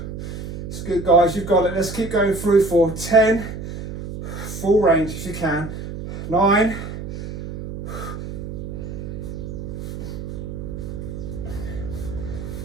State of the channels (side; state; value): right; noise; hum, 8 dB below the sound